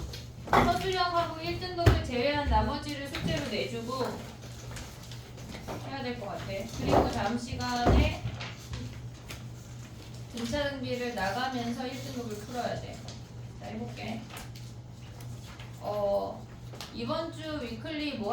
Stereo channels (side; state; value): both; identical; correlation 1.00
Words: 서술형하고 1등급을 제외한 나머지를 숙제로 내주고 해야 될 것 같아. 그리고 다음 시간에 등차등비를 나가면서 1등급을 풀어야 돼. 자, 해볼게. 이번 주 위클리